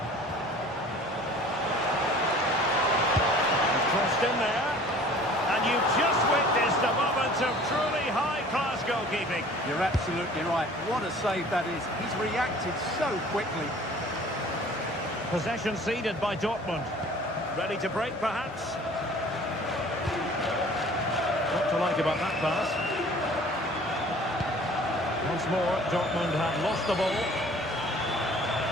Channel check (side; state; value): both; normal; correlation 0.48